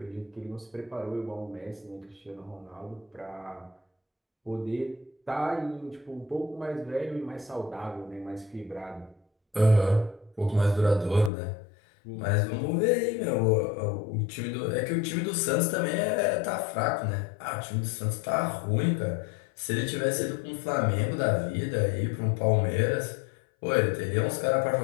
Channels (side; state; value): right; drops out; at 11.3 s